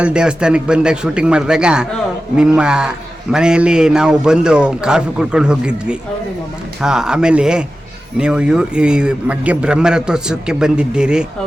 ದೇವಸ್ಥಾನಕ್ಕೆ ಬಂದಾಗ ಶೂಟಿಂಗ್ ಮಾಡಿದಾಗ ನಿಮ್ಮ ಮನೆಯಲ್ಲಿ ನಾವು ಬಂದು ಕಾಫಿ ಕುಡ್ಕೊಂಡು ಹೋಗಿದ್ವಿ. ಆಮೇಲೆ ನೀವು ಈ ಮಗ್ಗೆ ಬ್ರಹ್ಮರಥೋತ್ಸವಕ್ಕೆ ಬಂದಿದ್ದೀರಿ.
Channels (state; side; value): normal; both; correlation 0.94